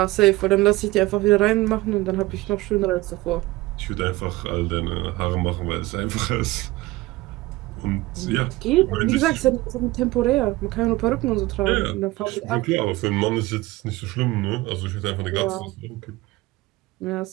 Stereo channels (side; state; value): left; quieter; 19.8 dB